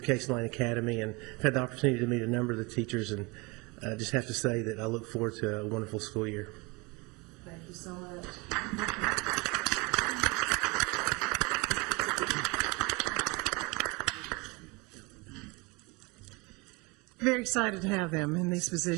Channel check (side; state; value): left; quieter; 26.0 dB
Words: Case Lane Academy, and I've had the opportunity to meet a number of the teachers, and I just have to say that I look forward to a wonderful school year. Thank you so much. Very excited to have them in these